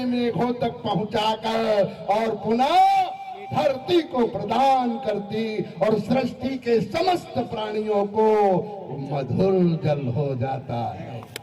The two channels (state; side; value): identical; both; correlation 1.00